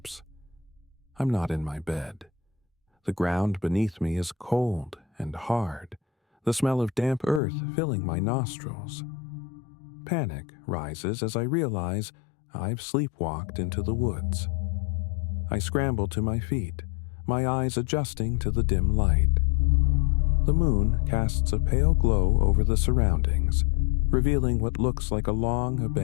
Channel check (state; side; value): drops out; right; at 7.4 s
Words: I'm not in my bed. The ground beneath me is cold and hard, the smell of damp earth filling my nostrils. Panic rises as I realize I've sleepwalked into the woods. I scramble to my feet, my eyes adjusting to the dim light. The moon casts a pale glow over the surroundings, revealing what looks like a long